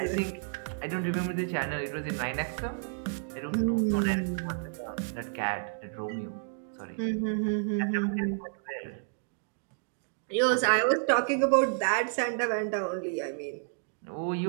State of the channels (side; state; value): left; silent; digital silence